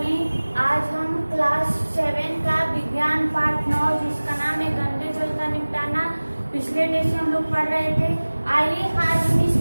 आज हम class 7 का विज्ञान पाठ 9 जिसका नाम है गंदे जल का निपटाना, पिछले डे से हम लोग पढ़ रहे थे। आइए आज हम इस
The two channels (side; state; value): both; inverted; correlation -1.00